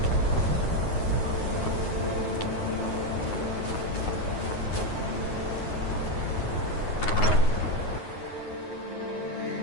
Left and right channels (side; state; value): right; late; 9.4 ms